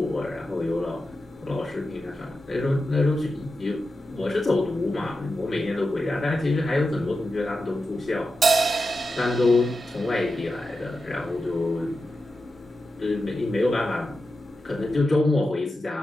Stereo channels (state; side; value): normal; both; correlation 0.90